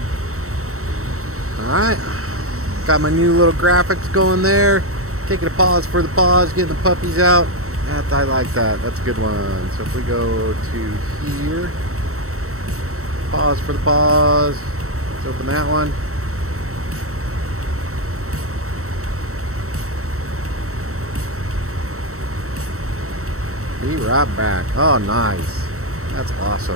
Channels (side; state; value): left; late; 0.64 ms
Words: Alright, got my new little graphics going there. Taking a pause for the pause, getting the puppies out. I like that. That's a good one. So if we go to here, pause for the pause. Let's open that one. Be right back. Oh, nice. That's